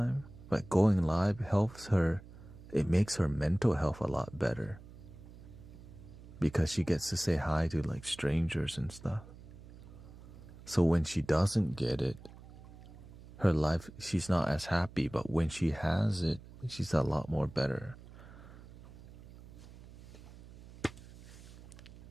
but going live helps her. It makes her mental health a lot better because she gets to say hi to strangers and stuff. So when she doesn't get it, her life, she's not as happy, but when she has it, she's a lot more better.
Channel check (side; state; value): right; noise; hum, 18 dB below the sound